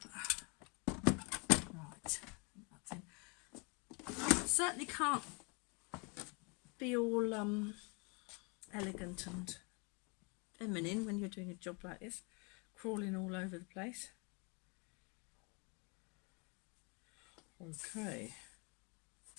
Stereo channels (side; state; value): right; quieter; 32.0 dB